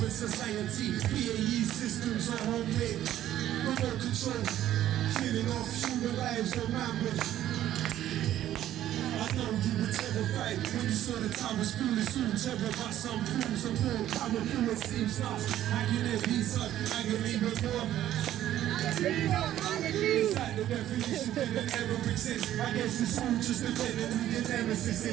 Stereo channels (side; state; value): left; quieter; 12.4 dB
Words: society? PAE systems are homemade, remote control, killing off human lives on rampage. I know you were terrified when you saw the time was foolish. Soon terror about some fools and more power through it seems lost. I can have peace up, I can leave it more. It's like the definition that it ever exists. I guess it's all just depending who your nemesis